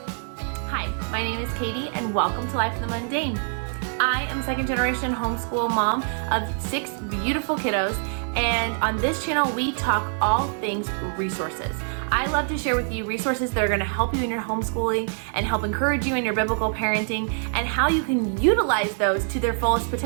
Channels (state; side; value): silent; left; 62 dB below the other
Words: Hi, my name is Katie and welcome to Life in the Mundane. I am second generation homeschool mom of 6 beautiful kiddos, and on this channel we talk all things resources. I love to share with you resources that are going to help you in your homeschooling and help encourage you in your biblical parenting, and how you can utilize those to their fullest